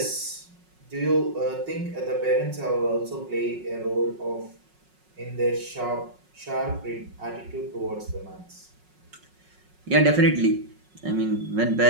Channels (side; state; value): left; late; 5.4 ms